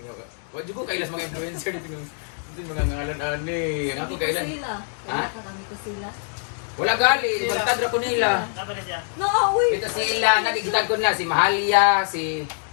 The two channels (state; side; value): silent; right; 60 dB below the other